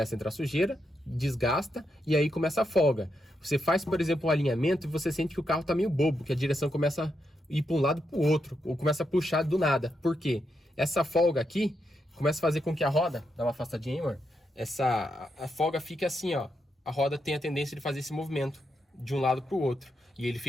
a entrar sujeira, desgasta e aí começa a folga. Você faz, por exemplo, um alinhamento e você sente que o carro tá meio bobo, que a direção começa a ir para um lado para o outro, ou começa a puxar do nada. Por quê? Essa folga aqui começa a fazer com que a roda, dá uma afastadinha aí, amor, a folga fica assim, ó. A roda tem a tendência de fazer esse movimento de um lado para o outro e ele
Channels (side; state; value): both; normal; correlation 0.83